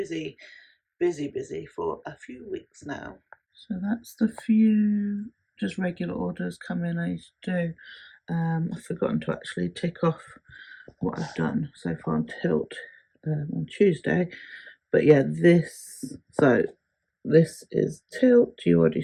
for a few weeks now. So that's the few just regular orders come in I used to do. I've forgotten to actually tick off what I've done so far on tilt on Tuesday. But yeah, this is tilt. You already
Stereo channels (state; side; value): identical; both; correlation 1.00